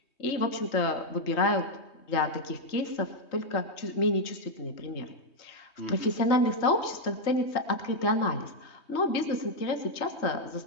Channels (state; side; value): late; right; 3.2 ms